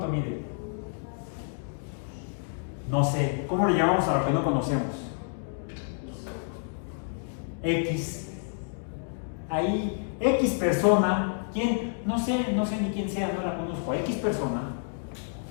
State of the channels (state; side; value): silent; right; digital silence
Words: mide? No sé, ¿cómo le llamamos a lo que no conocemos? X. Ahí, X persona, ¿quién? No sé ni quién sea, no la conozco. X persona,